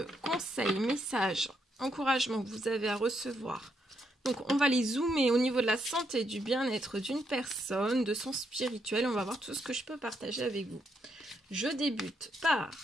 conseil, message, encouragement que vous avez à recevoir. Donc on va les zoomer au niveau de la santé, du bien-être d'une personne, de son spirituel. On va voir tout ce que je peux partager avec vous. Je débute par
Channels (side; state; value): both; normal; correlation 0.77